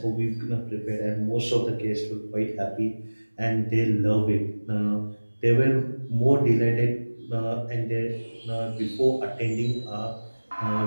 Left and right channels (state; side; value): inverted; both; correlation -1.00